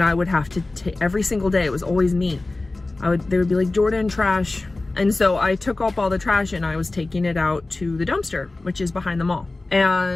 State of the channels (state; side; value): quieter; right; 3.1 dB